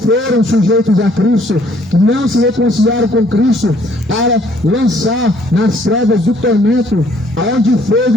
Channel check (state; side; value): normal; both; correlation 0.62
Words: sujeitos a Cristo, que não se reconciliaram com Cristo, para lançar nas trevas do tormento, aonde fogo